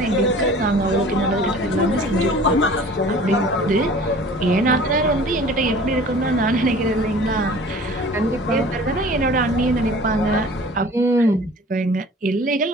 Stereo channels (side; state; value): both; normal; correlation 0.45